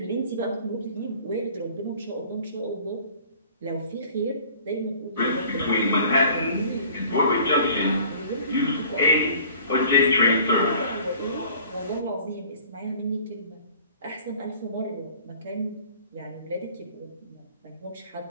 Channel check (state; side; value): inverted; both; correlation -0.48